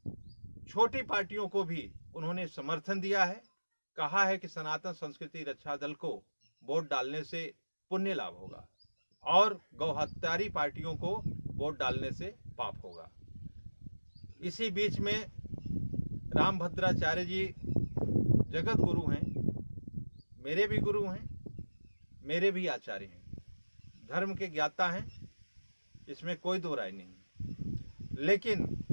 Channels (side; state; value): both; inverted; correlation -1.00